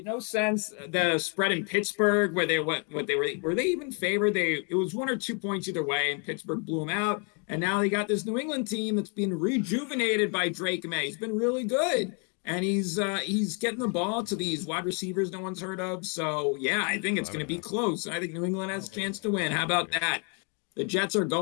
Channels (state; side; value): quieter; right; 36.6 dB